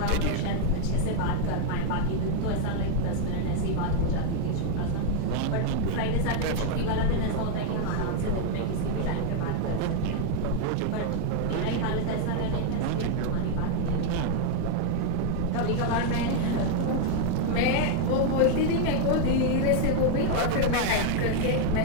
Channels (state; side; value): different; both; correlation 0.01